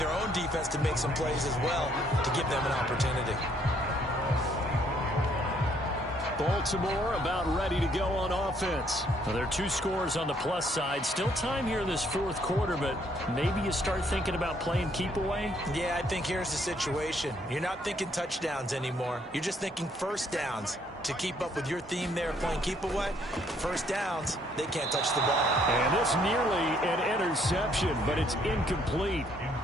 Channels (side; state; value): both; normal; correlation 0.67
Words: own defense to make some plays as well to give them an opportunity. Baltimore about ready to go on offense. Well, there are 2 scores on the plus side. Still time here in this 4th quarter, but maybe you start thinking about playing keep away? Yeah, I think here's the situation. You're not thinking touchdowns anymore. You're just thinking first downs. To keep up with your theme there, playing keep away, first downs, they can't touch the ball. And this nearly an interception, but it's incomplete.